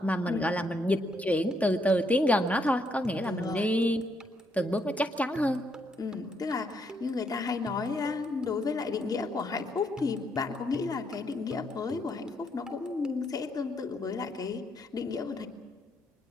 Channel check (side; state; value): both; normal; correlation 0.75